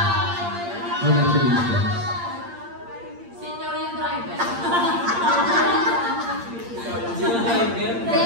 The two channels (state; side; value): late; left; 8.6 ms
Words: Congratulations. Senior yung driver.